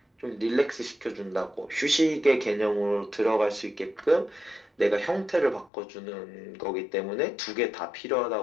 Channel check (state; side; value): drops out; right; at 5.7 s